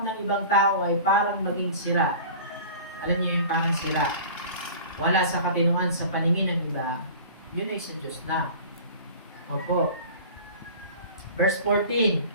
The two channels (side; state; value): both; inverted; correlation -0.41